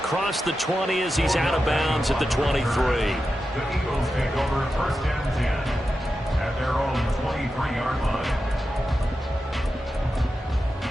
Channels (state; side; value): normal; both; correlation 0.90